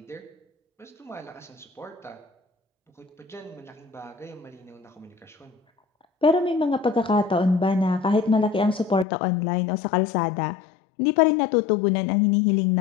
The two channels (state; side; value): drops out; right; at 9.1 s